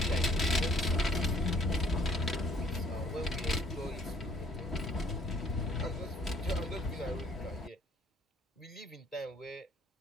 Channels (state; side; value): normal; both; correlation 0.62